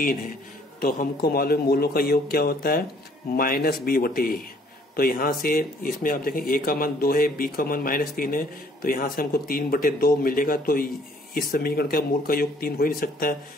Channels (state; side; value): normal; both; correlation 0.61